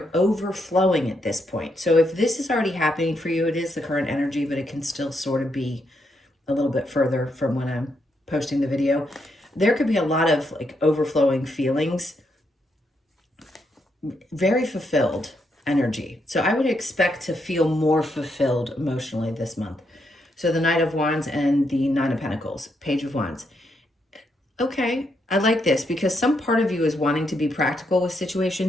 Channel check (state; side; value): normal; both; correlation 0.79